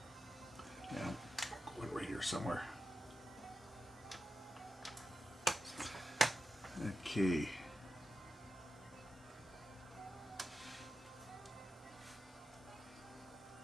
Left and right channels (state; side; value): normal; both; correlation 0.91